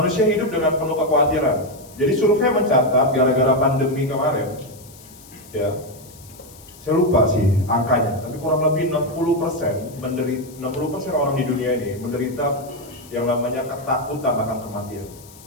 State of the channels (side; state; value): left; noise; hiss, 22 dB below the sound